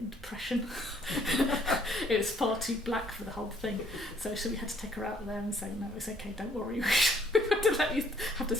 depression." It was far too black for the whole thing. So we had to take her out of there and say, "No, it's okay. Don't worry. We have to let you have to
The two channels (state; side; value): normal; both; correlation 0.64